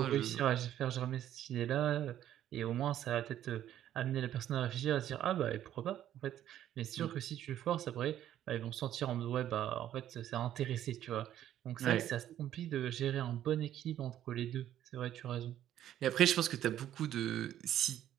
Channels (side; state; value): left; quieter; 11.6 dB